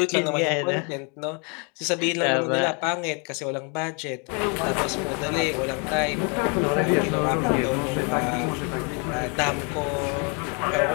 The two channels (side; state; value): right; quieter; 35.0 dB